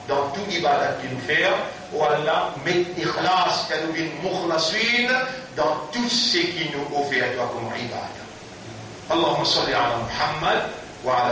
dans tout ibadat qu'il nous fait, ou Allah, met ikhlas, que nous vînes mukhlasin, dans tout ce qui nous offre à toi comme ibadat. Allahumma salli ala Muhammad, wa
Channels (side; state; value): both; identical; correlation 1.00